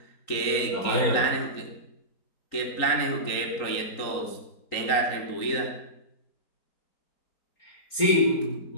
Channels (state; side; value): late; right; 4.4 ms